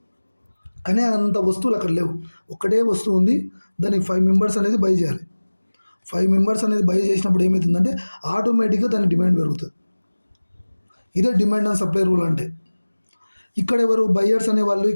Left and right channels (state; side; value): inverted; both; correlation -1.00